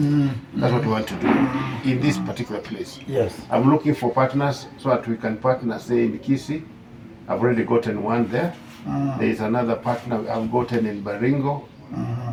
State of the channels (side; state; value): both; identical; correlation 1.00